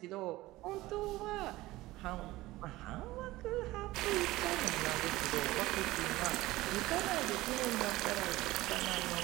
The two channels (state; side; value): quieter; left; 18.2 dB